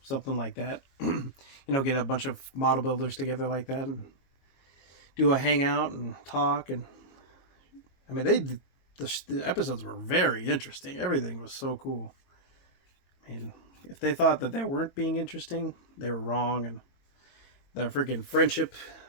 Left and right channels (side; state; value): right; late; 22 ms